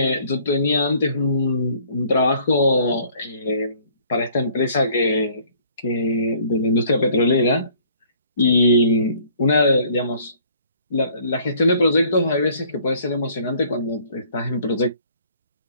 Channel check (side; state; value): both; inverted; correlation -0.58